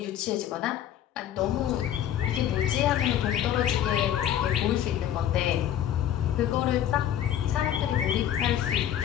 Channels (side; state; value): right; quieter; 10.8 dB